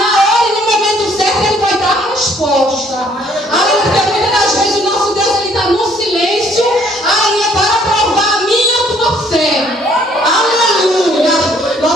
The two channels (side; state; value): both; normal; correlation 0.63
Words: hora e no momento certo, Ele vai dar a resposta. Aleluia, porque muitas das vezes o nosso Deus, Ele está no silêncio, aleluia, para provar a minha e a tua fé. Aleluia,